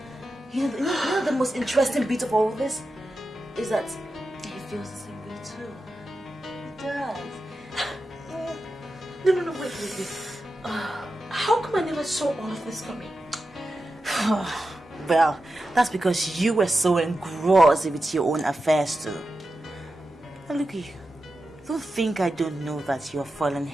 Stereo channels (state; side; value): normal; both; correlation 0.91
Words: You know the most interesting bit of all of this? Is that he feels the same way too. He does. No, wait. How come I never saw all of this coming? Well, that's because you were so engrossed with your own affairs too. Now look at you. Don't think I don't know that you're falling